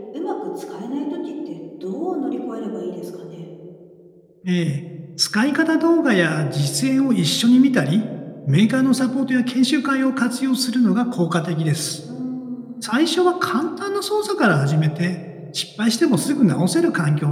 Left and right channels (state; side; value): identical; both; correlation 1.00